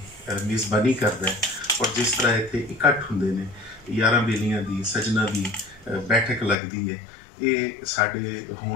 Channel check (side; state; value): right; drops out; at 6.6 s